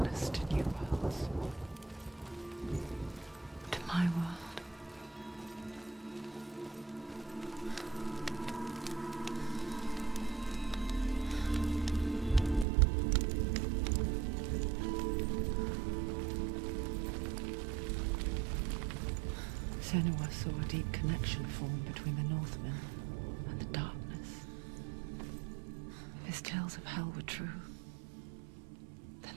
to new worlds. To my world. Senua saw a deep connection form between the Northmen and the darkness. If his tales of hell were true,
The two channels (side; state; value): left; drops out; at 12.7 s